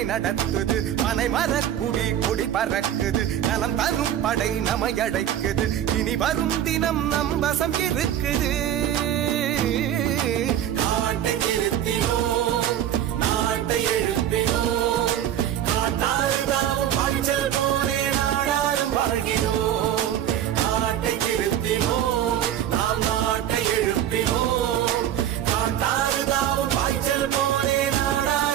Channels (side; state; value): left; quieter; 10.9 dB